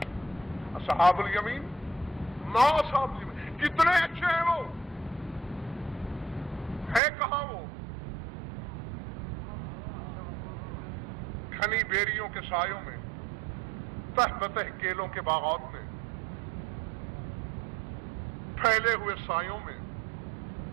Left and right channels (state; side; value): drops out; left; at 7.0 s